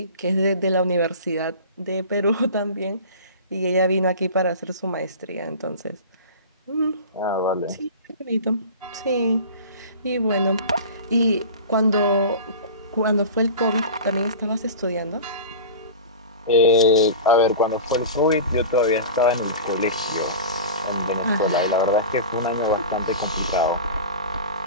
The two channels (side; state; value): both; inverted; correlation -0.34